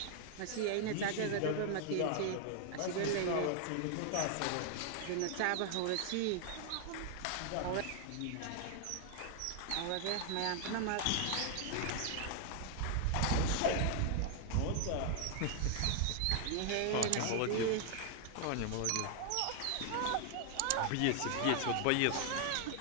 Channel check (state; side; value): different; both; correlation 0.00